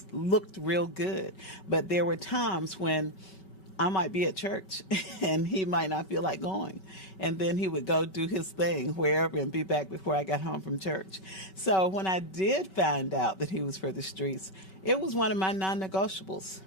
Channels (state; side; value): late; right; 5.3 ms